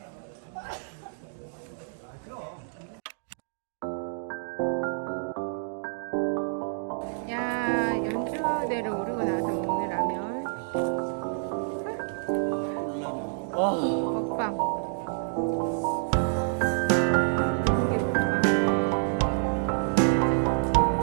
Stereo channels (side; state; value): left; silent; digital silence